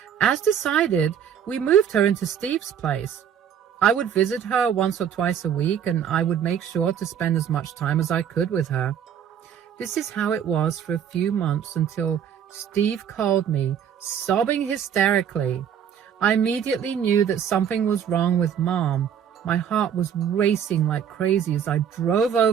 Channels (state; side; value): quieter; left; 8.6 dB